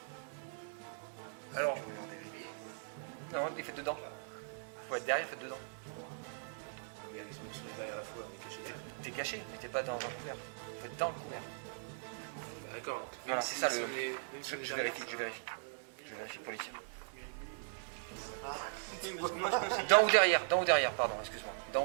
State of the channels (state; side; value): silent; left; 52 dB below the other